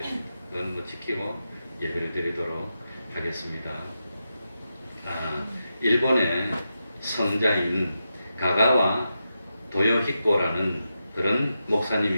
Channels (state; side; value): inverted; both; correlation -0.88